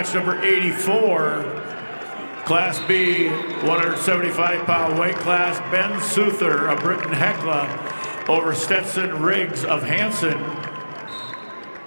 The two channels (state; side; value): inverted; both; correlation -1.00